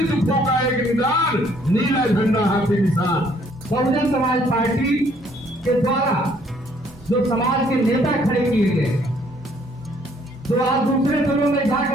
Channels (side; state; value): both; normal; correlation 0.64